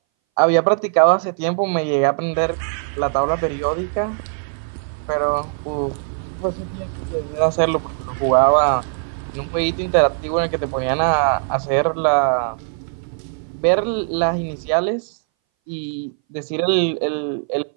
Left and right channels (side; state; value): left; silent; 61 dB below the other